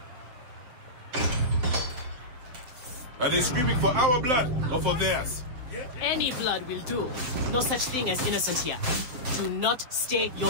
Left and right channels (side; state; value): left; late; 7.8 ms